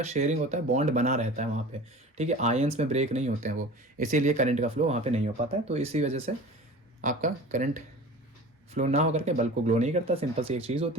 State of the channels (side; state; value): both; normal; correlation 0.38